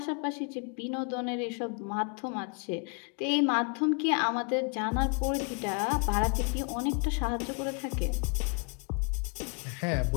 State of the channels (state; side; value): quieter; right; 37.1 dB